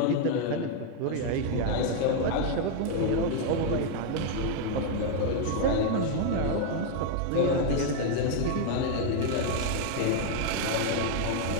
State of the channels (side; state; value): both; different; correlation 0.00